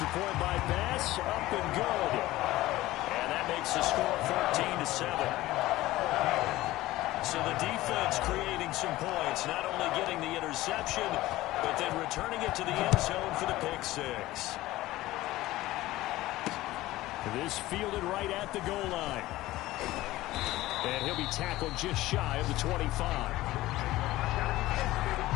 point by Bass, up and good. And that makes the score 14-7. So the defense creating some points, not only getting the interception, but then returning it to the end zone for the pick 6. This fielded right at the goal line. And he'll be tackled just shy of the 25.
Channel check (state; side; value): quieter; right; 17.1 dB